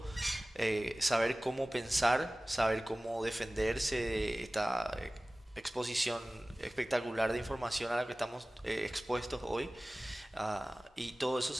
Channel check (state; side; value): normal; both; correlation 0.98